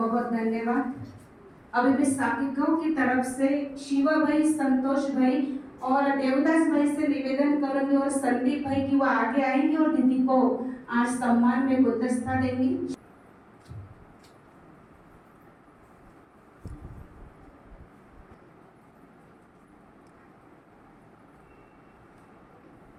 धन्यवाद। अभी भी साकिकों की तरफ से शिवा भाई, संतोष भाई और देवदास भाई से निवेदन करूंगी और संदीप भाई की वो आगे आएंगे और दीदी को आज सम्मान में गुलदस्ता देंगी।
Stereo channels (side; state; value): both; identical; correlation 1.00